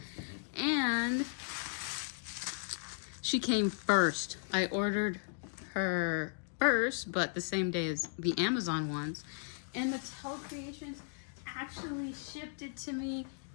and she came first. I ordered her first, but the same day as the Amazon ones, and Mattel Creations actually shipped it to me,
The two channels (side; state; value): right; silent; digital silence